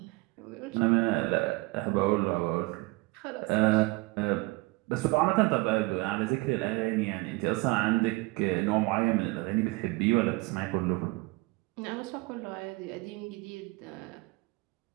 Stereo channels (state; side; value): quieter; left; 23.7 dB